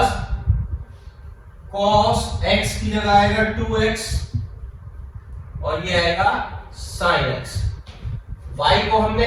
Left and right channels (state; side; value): identical; both; correlation 1.00